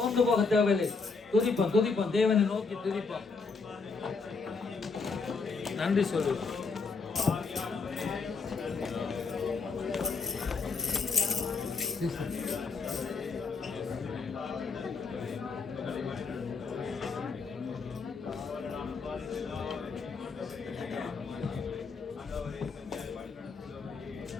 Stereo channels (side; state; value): right; quieter; 4.6 dB